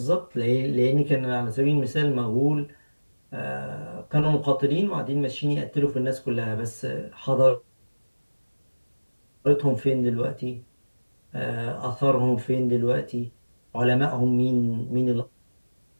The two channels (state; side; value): inverted; both; correlation -1.00